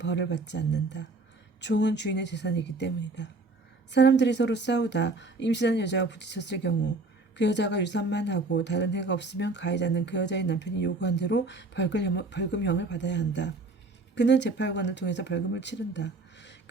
받지 않는다. 종은 주인의 재산이기 때문이다. 사람들이 서로 싸우다 임신한 여자와 부딪혔을 경우 그 여자가 유산만 하고 다른 해가 없으면 가해자는 그 여자의 남편이 요구한 대로 벌금형을 받아야 한다. 그는 재판관을 통해서 벌금을 치른다.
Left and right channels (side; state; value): left; quieter; 3.3 dB